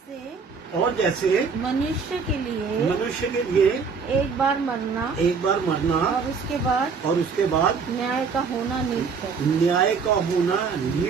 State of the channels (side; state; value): left; quieter; 5.4 dB